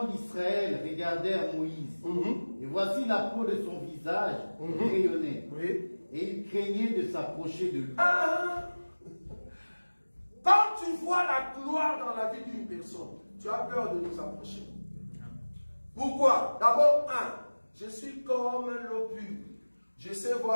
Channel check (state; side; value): inverted; both; correlation -1.00